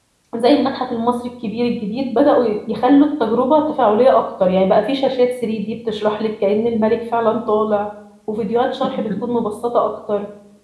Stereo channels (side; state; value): both; identical; correlation 1.00